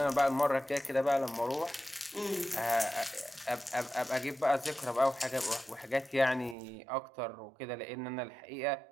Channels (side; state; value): left; drops out; at 6.6 s